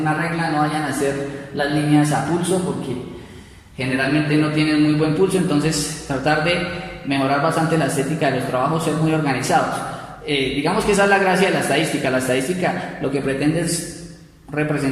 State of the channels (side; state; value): both; identical; correlation 1.00